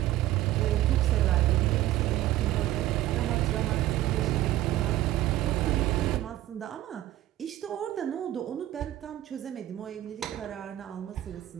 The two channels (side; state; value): left; quieter; 14.4 dB